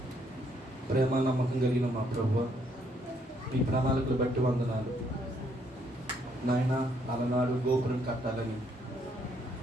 ప్రేమ నమ్మకం కలిగిన మా ప్రభువా, మీ ప్రణాళికలు బట్టి వందనాలు నాయన. అలనాడు గోపురం కట్టాలని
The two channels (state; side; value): normal; both; correlation 0.70